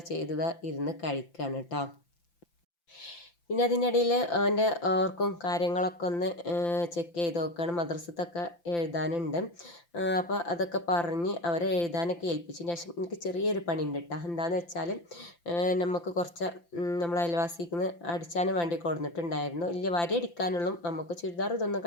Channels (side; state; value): right; late; 5.9 ms